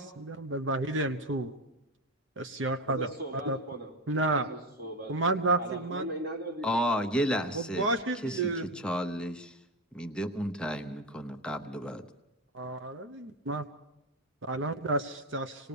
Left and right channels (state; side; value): normal; both; correlation 0.16